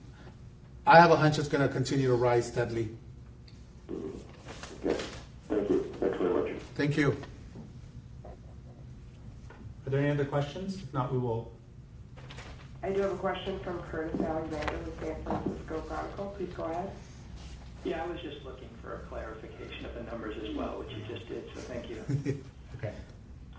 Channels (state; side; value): identical; both; correlation 1.00